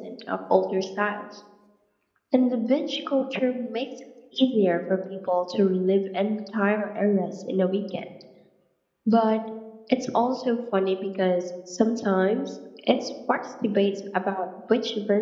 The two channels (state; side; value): identical; both; correlation 1.00